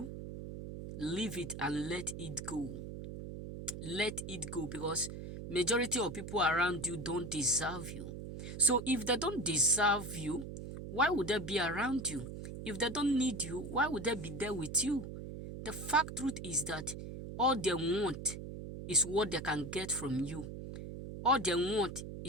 leave it and let it go. Let it go, because majority of people around you don't deserve you. So if they don't deserve you, why would they be around you? If they don't need you, why would they be there with you? The fact truth is that all they want is what they can get from you. All they want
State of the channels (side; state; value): right; noise; hum, 9 dB below the sound